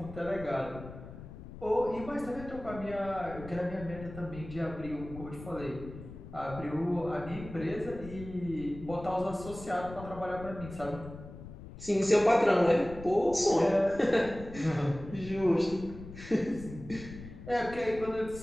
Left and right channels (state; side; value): noise; left; rumble, 14 dB below the sound